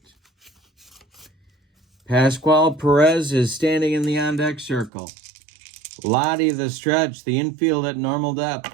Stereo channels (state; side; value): drops out; left; at 4.9 s